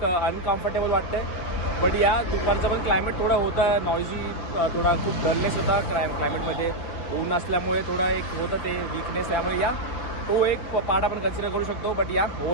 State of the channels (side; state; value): right; late; 6.3 ms